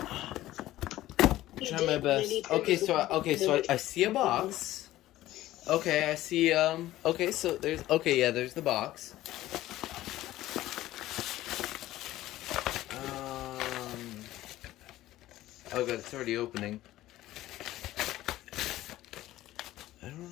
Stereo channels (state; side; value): quieter; right; 15.3 dB